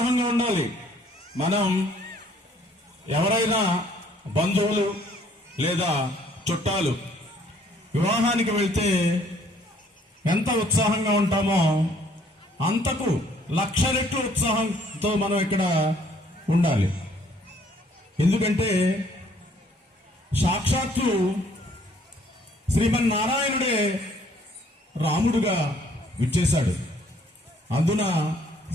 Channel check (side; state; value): both; normal; correlation 0.62